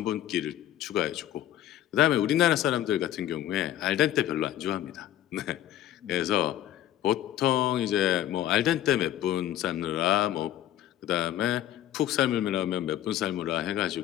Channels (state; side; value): quieter; right; 12.6 dB